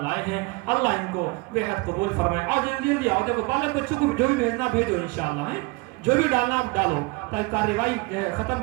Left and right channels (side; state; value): left; quieter; 25.3 dB